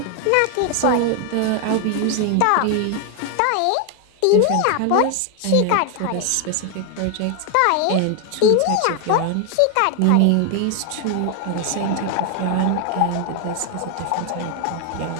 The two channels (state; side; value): different; both; correlation 0.00